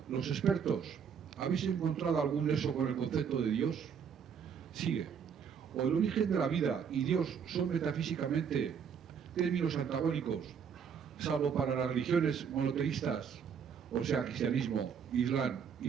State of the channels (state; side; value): quieter; left; 7.1 dB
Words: los expertos, ¿habéis encontrado algún nexo con el concepto de Dios? Sigue. O el origen de la vida y Dios son metafísicamente términos antagónicos, salvo para las religiones monoteístas, o sea, cristianismo, islam